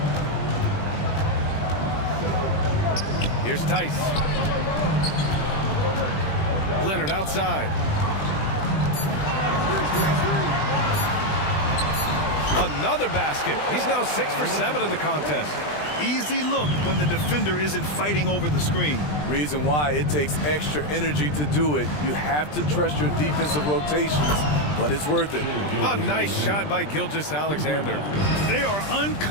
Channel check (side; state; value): right; late; 20 ms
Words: Here's Tice. Leonard outside. Another basket. He's now 6 for 7 in the contest. Easy look when the defender isn't fighting over the screen. Reason why it takes extra energy to do it. You have to trust your defensive rotations, but it's worth it. A nice shot by Gilgeous-Alexander. They are